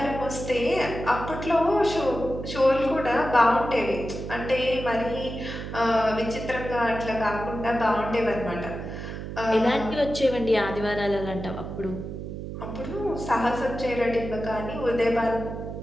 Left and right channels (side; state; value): right; noise; hum, 8 dB below the sound